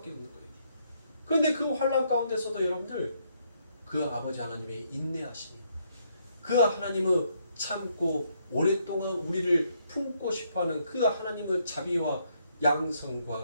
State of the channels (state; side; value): inverted; both; correlation -0.73